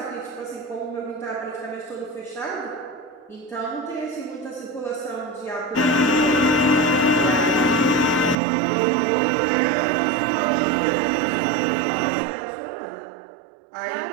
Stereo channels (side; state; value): left; drops out; at 8.3 s